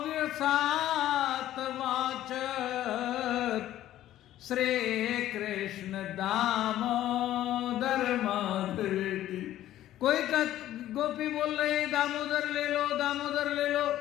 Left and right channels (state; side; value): quieter; right; 13.2 dB